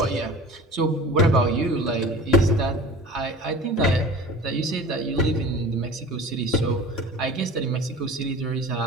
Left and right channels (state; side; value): normal; both; correlation 0.39